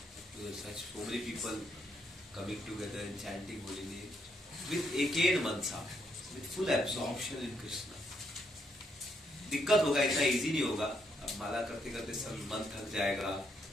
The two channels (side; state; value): both; normal; correlation 0.76